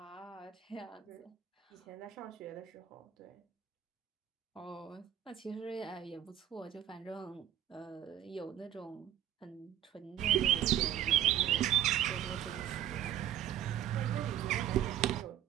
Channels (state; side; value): quieter; left; 11.1 dB